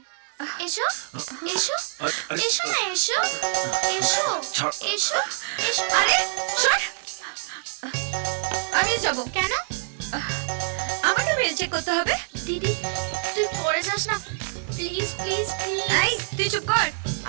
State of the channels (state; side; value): silent; left; 61 dB below the other